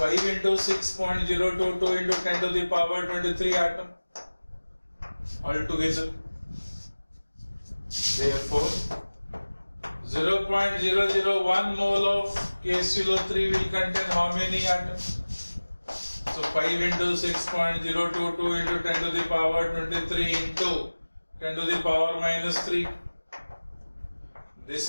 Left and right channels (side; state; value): both; inverted; correlation -1.00